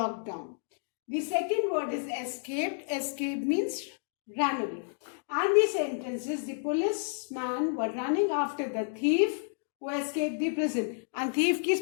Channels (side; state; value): right; silent; digital silence